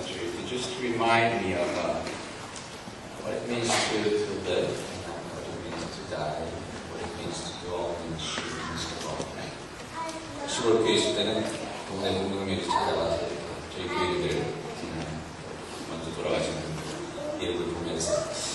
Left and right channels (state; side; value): identical; both; correlation 1.00